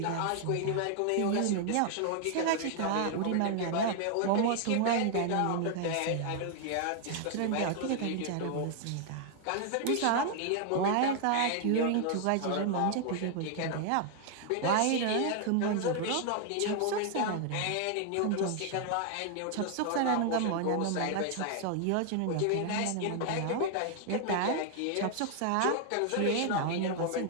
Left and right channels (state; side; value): different; both; correlation 0.00